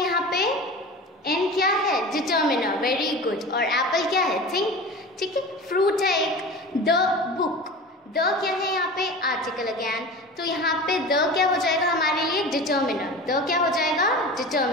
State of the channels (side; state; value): both; normal; correlation 0.34